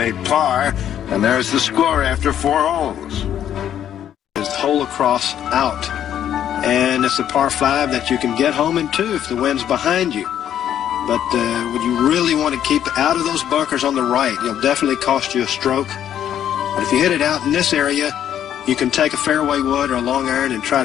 par, and there's the score after 4 holes. It's hole across out, and it's a par 5 that you can get home in 2 if the wind's behind you. But would you really want to keep out of those bunkers on the right? It'll definitely cost you a stroke. But if you hit it out in this area, you can take a fairway wood or a long iron and try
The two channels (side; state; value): right; quieter; 10.3 dB